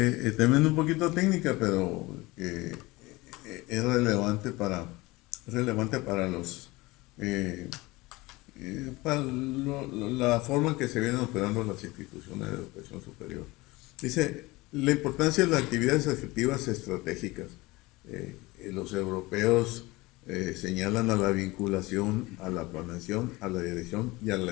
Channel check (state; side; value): quieter; right; 21.6 dB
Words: también un poquito técnica, pero es relevante para los para la forma en que se vienen operando las instituciones de educación superior. Dice, la importancia de las actividades afectivas estratégicas. Los europeos señalan a la vinculación, a la planeación, a la dirección y a